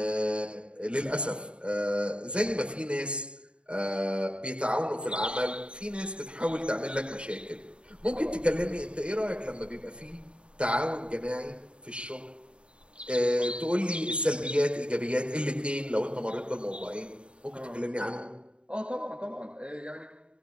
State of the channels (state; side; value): late; left; 0.055 ms